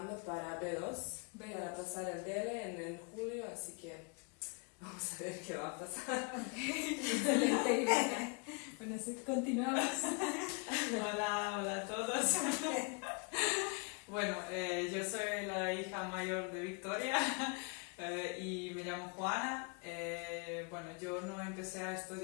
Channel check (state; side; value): quieter; right; 33.9 dB